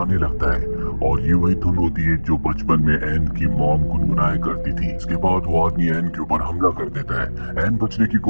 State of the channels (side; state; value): both; inverted; correlation -1.00